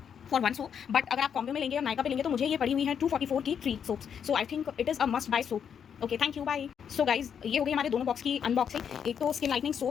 फॉर 1 सोप, बट अगर आप कॉम्बो में लेंगे और नायका पे लेंगे तो मुझे ये पड़ी हुई है 244 की 3 soaps. So I think it is a must buy soap. Okay, thank you, bye. So guys, ये हो गई हमारे दोनों बॉक्स की अनबॉक्सिंग। एक तो स्किन लाइटनिंग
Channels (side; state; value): right; quieter; 7.8 dB